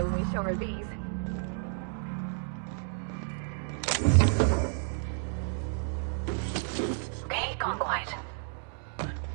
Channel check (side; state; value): left; silent; 57 dB below the other